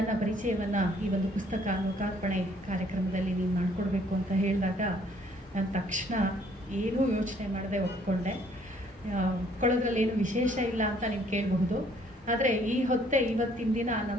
ಪರಿಚಯವನ್ನು ಈ ಒಂದು ಪುಸ್ತಕ ಲೋಕಾರ್ಪಣೆ ಕಾರ್ಯಕ್ರಮದಲ್ಲಿ ನೀವು ಮಾಡಿಕೊಡ್ಬೇಕು ಅಂತ ಹೇಳಿದಾಗ ನಾನು ತಕ್ಷಣ ಏನೂ ಯೋಚನೆ ಮಾಡದೆ ಒಪ್ಕೊಂಡೆ. ಒಪ್ಕೊಳ್ಳೋದ್ರಲ್ಲಿ ಏನು ವಿಶೇಷ ಇಲ್ಲ ಅಂತ ನೀವು ಕೇಳಬಹುದು. ಆದರೆ ಈ ಹೊತ್ತೆ ಇವತ್ತಿನ ದಿನ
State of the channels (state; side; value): normal; both; correlation 0.62